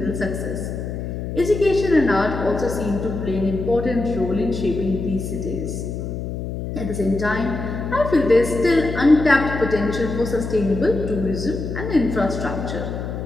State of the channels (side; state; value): left; noise; hum, 5 dB below the sound